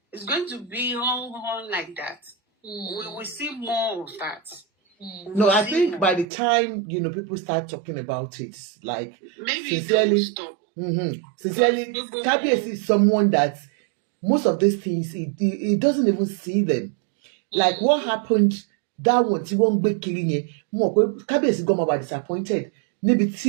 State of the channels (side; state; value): left; drops out; at 6.2 s